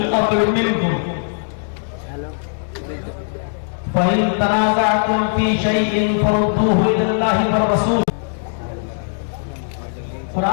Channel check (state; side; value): silent; right; digital silence